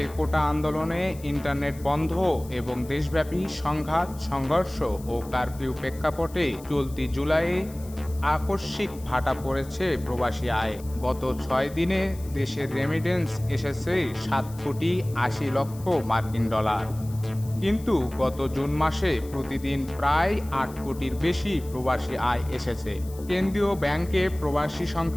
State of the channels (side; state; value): left; noise; hiss, 21 dB below the sound